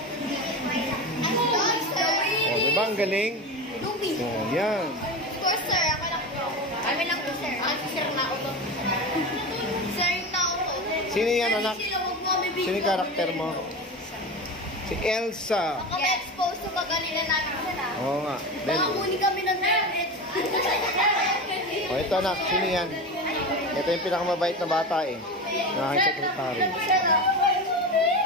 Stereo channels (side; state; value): both; normal; correlation 0.24